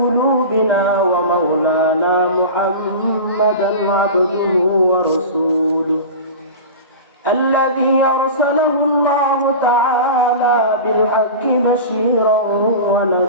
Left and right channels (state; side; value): inverted; both; correlation -0.31